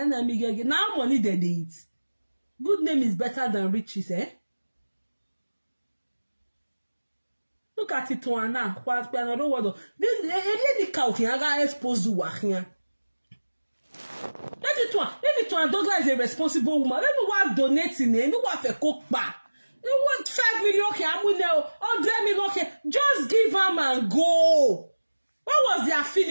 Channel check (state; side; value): inverted; both; correlation -1.00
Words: money they eat. Good name is better than riches, eh? Look at it now. What another word? This cow can expose you here. Let it one Douglas is a responsible woman. Let me what donating. Let me what a cook back. You want 5 million? Okay, I'm going to 100 million. Okay, just give them and go. What was the